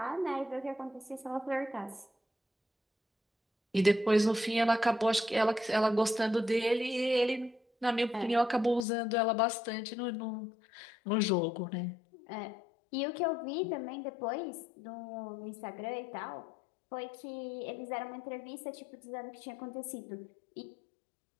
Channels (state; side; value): drops out; right; at 8.8 s